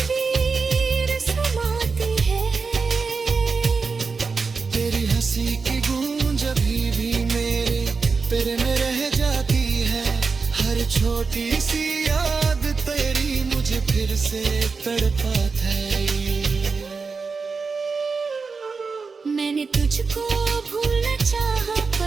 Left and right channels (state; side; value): quieter; left; 4.8 dB